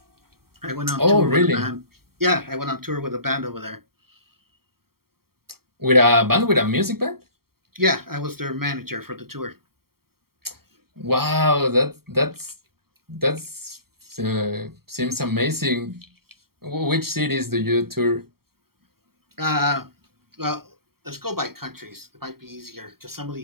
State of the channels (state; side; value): late; left; 0.94 ms